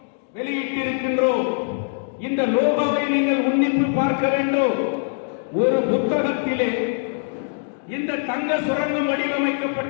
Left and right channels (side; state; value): right; silent; digital silence